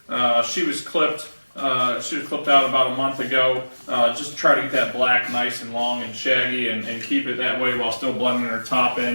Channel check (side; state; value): both; inverted; correlation -1.00